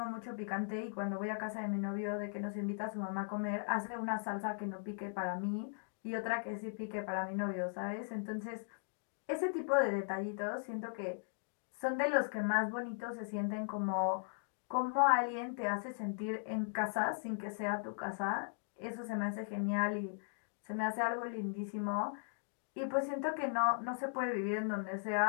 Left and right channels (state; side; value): silent; right; digital silence